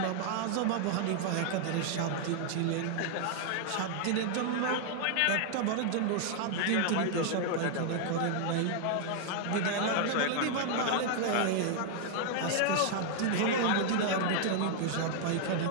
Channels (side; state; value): both; different; correlation 0.00